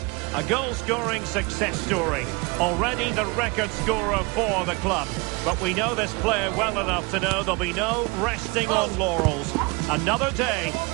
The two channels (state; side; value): quieter; left; 27.6 dB